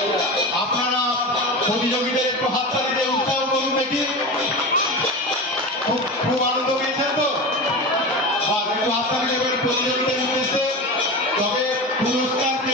আপনারা প্রতিযোগীদের একটু হাততালি দিয়ে উৎসাহ করুন দেখি। খুব আনন্দ পেয়েছেন তো? একটু হাততালি দেবেন প্রতিযোগীদের উদ্দেশ্যে। তবে পুরস্কার কে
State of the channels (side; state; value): both; normal; correlation 0.26